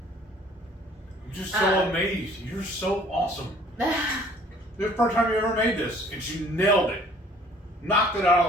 I'm just so amazed. You're so awesome. The first time you ever made this, and you nailed it. Knocked it out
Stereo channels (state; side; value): normal; both; correlation 0.55